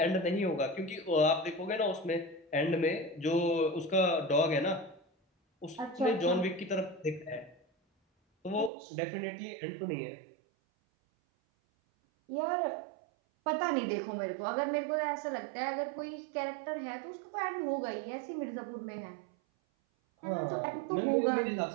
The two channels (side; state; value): left; drops out; at 8.7 s